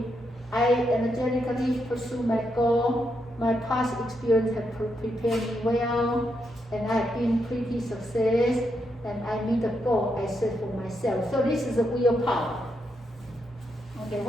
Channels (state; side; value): normal; both; correlation 0.81